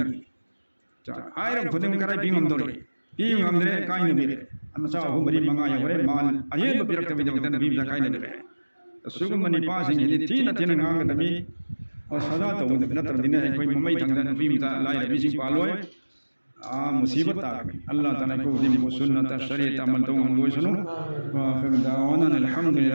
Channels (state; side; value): inverted; both; correlation -1.00